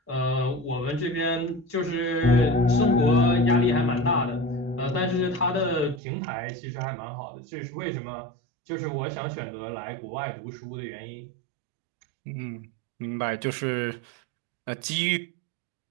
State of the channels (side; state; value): left; drops out; at 6.0 s